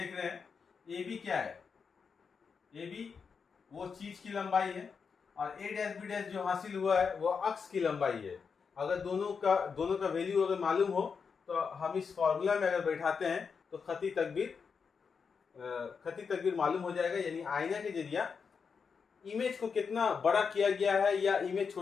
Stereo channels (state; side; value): quieter; right; 5.8 dB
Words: रहे हैं ए बी क्या है? ए बी वो चीज की लंबाई है और ए डैश बी डैश जो हासिल हुआ है वो अक्स की लंबाई है। अगर दोनों का वैल्यू अगर मालूम हो तो हम इस फॉर्मूला में अगर बैठाते हैं तो खती तकबीर मालूम हो जाएगा। यानी आईना के जरिए इमेज को कितना बड़ा किया गया है या इमेज